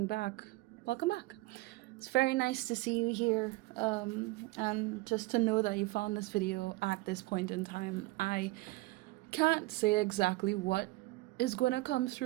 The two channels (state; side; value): quieter; left; 21.4 dB